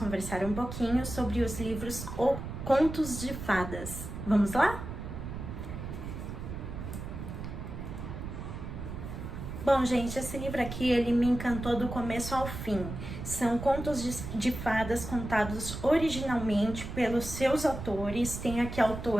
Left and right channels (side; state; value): right; noise; rumble, 8 dB below the sound